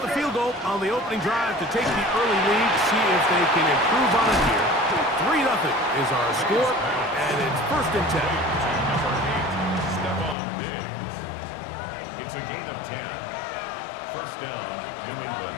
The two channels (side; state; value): right; drops out; at 10.4 s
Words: the field goal on the opening drive to take the early lead, see if they can improve on it here. 3-0 is our score, and it's first and 10. Stephon Diggs. It's a gain of 10. First down, New